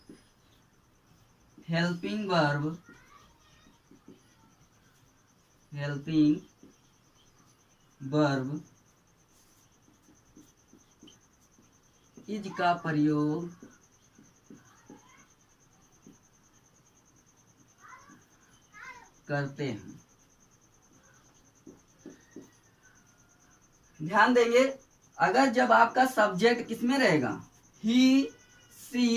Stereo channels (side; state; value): both; identical; correlation 1.00